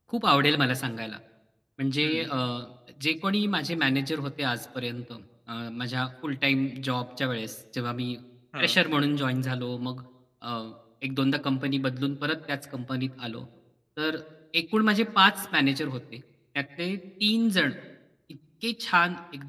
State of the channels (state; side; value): identical; both; correlation 1.00